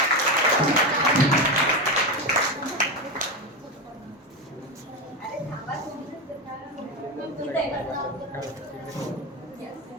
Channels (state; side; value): normal; both; correlation 0.15